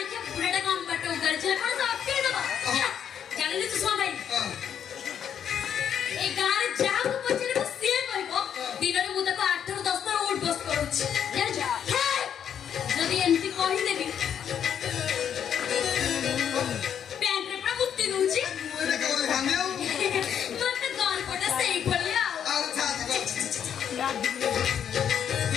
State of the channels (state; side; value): quieter; right; 8.7 dB